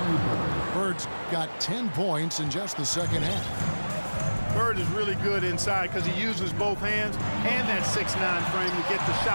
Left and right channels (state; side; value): inverted; both; correlation -1.00